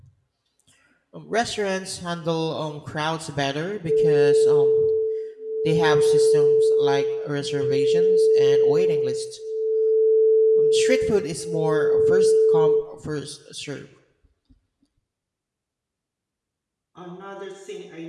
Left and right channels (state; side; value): identical; both; correlation 1.00